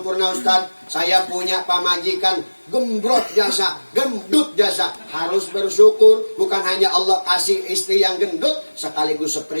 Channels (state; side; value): inverted; both; correlation -1.00